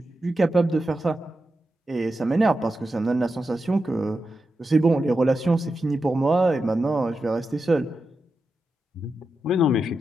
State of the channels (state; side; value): normal; both; correlation 0.89